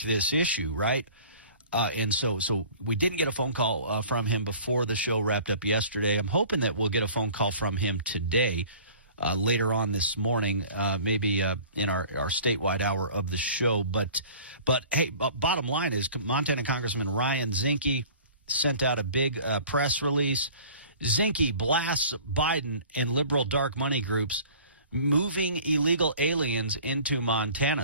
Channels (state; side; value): inverted; both; correlation -0.47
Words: issue, right? And so we didn't get a phone call from him before the show wrapped up yesterday. I'm hoping that we'll get a phone call from him today, later on this morning, maybe in our statewide hour of the show. But hey, bottom line is Montana Congressman Ryan Zinke sent out a big press release. Zinke blasts Biden and liberal dark money groups moving illegal aliens into